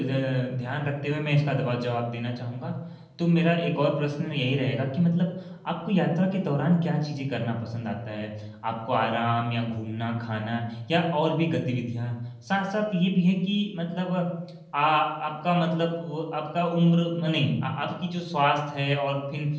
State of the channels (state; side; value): identical; both; correlation 1.00